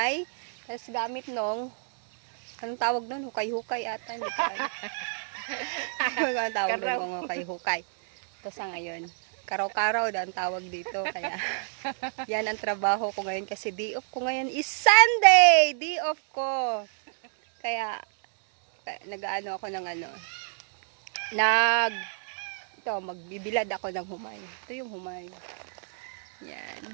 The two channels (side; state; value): left; silent; digital silence